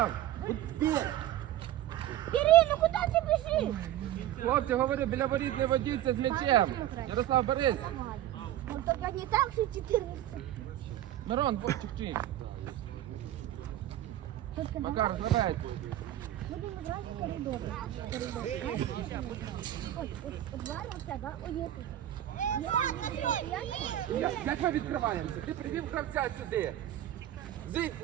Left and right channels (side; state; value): left; quieter; 13.0 dB